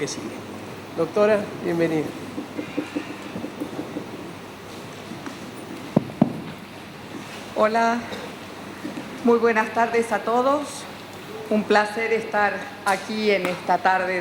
sigue. Doctora, bienvenida. Hola, muy buenas tardes a todos. Un placer estar aquí en esta tarde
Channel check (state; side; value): identical; both; correlation 1.00